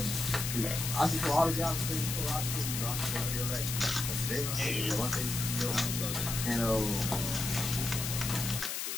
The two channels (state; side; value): noise; left; hiss, 3 dB below the sound